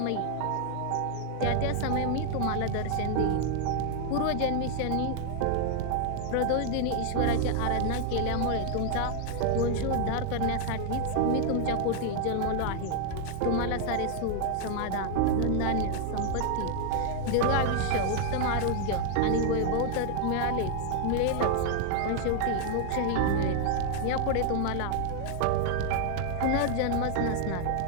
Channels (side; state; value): both; different; correlation 0.00